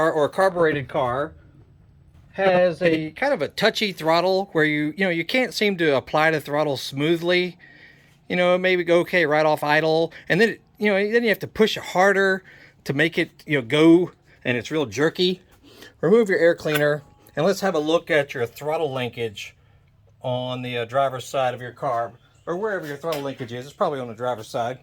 or a carbureted car, has a kind of a touchy throttle where you can't seem to apply the throttle smoothly. Maybe go okay right off idle, and then then you have to push it harder to make it go, and it's real jerky. Remove your air cleaner, and let's have a look at your throttle linkage on the driver's side of your car, or wherever your throttle linkage is. It's probably on the driver's side.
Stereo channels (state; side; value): identical; both; correlation 1.00